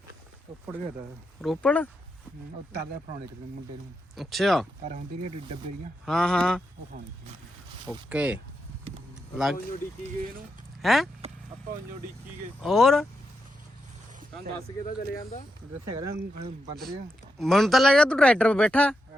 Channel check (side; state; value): both; normal; correlation 0.85